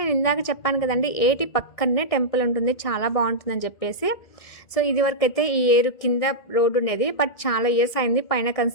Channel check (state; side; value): late; right; 1.6 ms